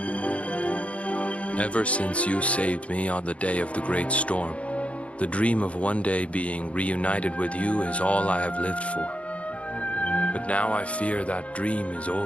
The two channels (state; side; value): late; right; 0.063 ms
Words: ever since you saved me on the day of the great storm, the dream of one day being reunited with you is all I have lived for. But now I fear that dream is